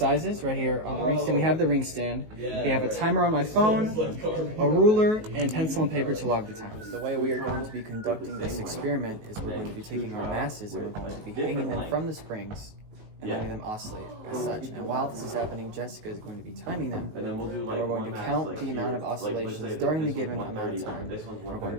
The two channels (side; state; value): left; late; 19 ms